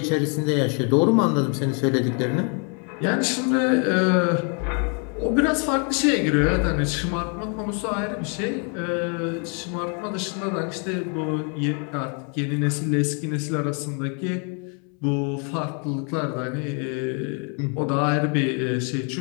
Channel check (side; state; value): right; quieter; 38.6 dB